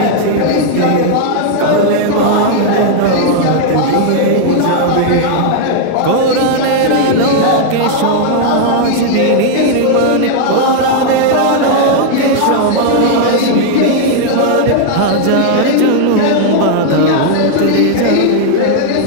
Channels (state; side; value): different; both; correlation -0.01